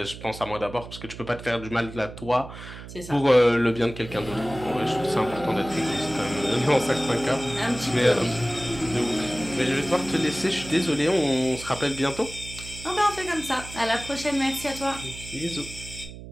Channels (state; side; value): noise; right; hum, 13 dB below the sound